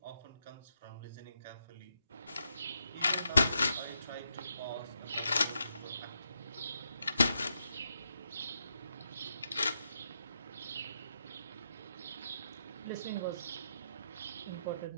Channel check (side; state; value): both; inverted; correlation -0.82